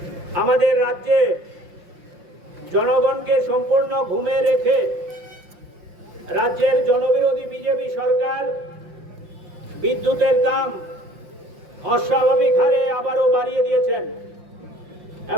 আমাদের রাজ্যে জনগণকে সম্পূর্ণ ঘুমে রেখে রাজ্যের জনবিরোধী বিজেপি সরকার বিদ্যুতের দাম অস্বাভাবিক হারে আবারও বাড়িয়ে দিয়েছেন।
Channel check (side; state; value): left; late; 5.7 ms